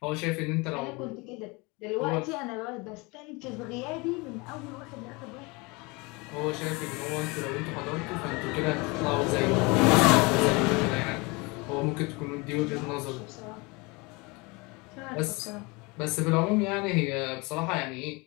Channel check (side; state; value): right; quieter; 26.6 dB